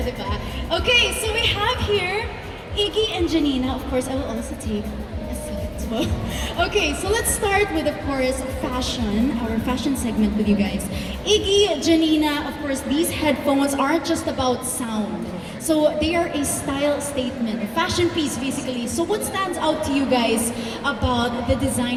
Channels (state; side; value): identical; both; correlation 1.00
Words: diba? Okay, so we have here Iggy and Janina. Of course, I will also take a seat as well. Okay, so let's start with, of course, fashion, our fashion segment with you guys. Iggy, Janina, of course, these headphones aren't just about sound. So they are a style statement, a fashion piece basically. So what stands out to you guys about the